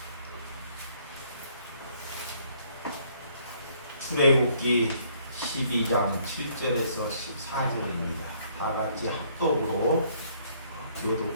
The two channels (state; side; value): inverted; both; correlation -0.64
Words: 출애굽기 12장 7절에서 14절입니다. 다 같이 합독으로